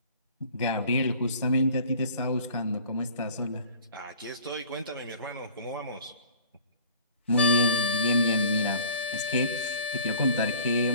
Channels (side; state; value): both; inverted; correlation -0.48